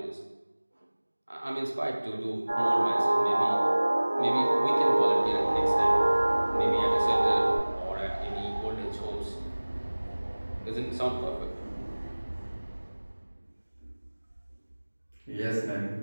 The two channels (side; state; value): both; inverted; correlation -1.00